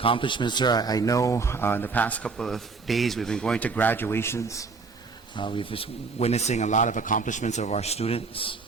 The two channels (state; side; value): quieter; left; 4.5 dB